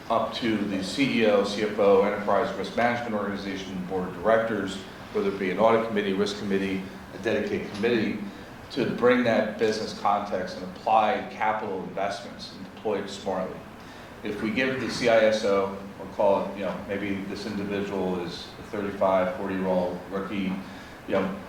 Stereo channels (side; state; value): both; identical; correlation 1.00